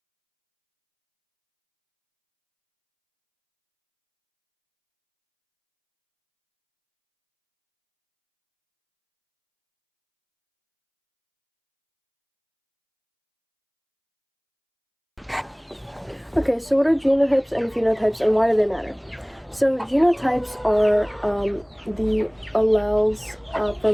Okay, so what are genotypes and phenotypes, and why do they matter? So genotypes are the alleles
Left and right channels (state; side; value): identical; both; correlation 1.00